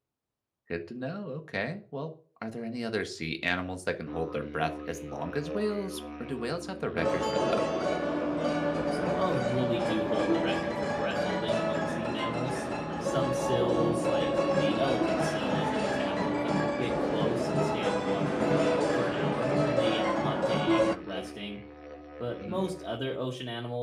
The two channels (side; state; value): both; identical; correlation 1.00